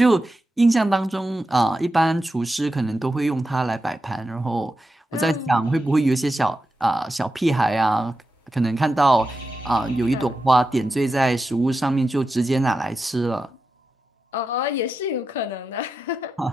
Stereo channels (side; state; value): both; normal; correlation 0.90